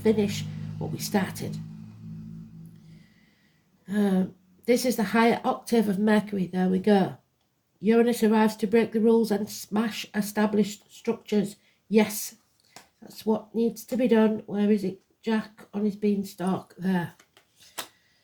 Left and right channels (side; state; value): both; identical; correlation 1.00